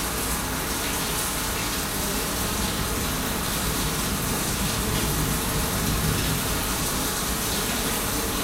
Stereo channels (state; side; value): identical; both; correlation 1.00